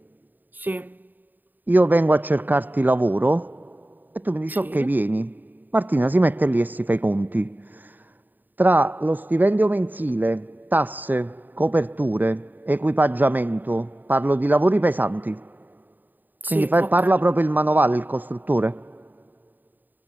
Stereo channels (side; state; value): left; late; 0.088 ms